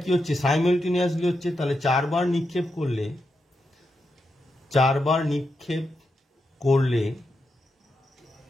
কি হচ্ছে? সাইমালটেনিয়াসলি হচ্ছে। তাহলে 4বার নিক্ষেপ করলে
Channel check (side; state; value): both; normal; correlation 0.85